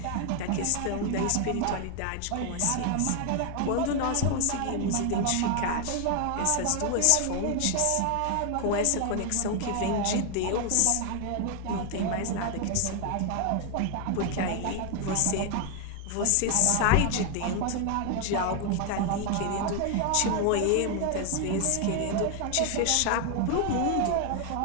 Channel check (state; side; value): different; both; correlation 0.00